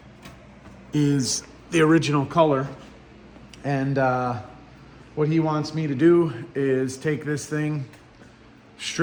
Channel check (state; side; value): identical; both; correlation 1.00